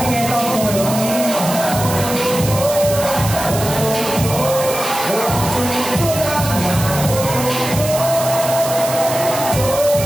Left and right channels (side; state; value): right; noise; hiss, 7 dB below the sound